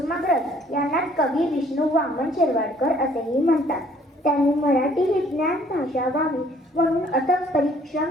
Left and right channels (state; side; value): normal; both; correlation 0.60